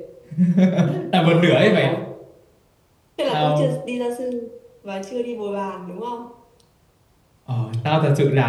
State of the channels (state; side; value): identical; both; correlation 1.00